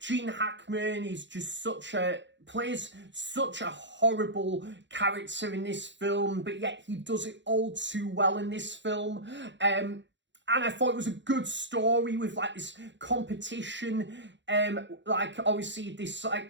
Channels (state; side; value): late; left; 0.53 ms